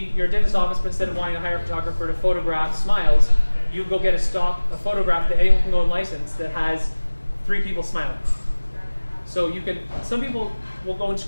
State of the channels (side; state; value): both; inverted; correlation -1.00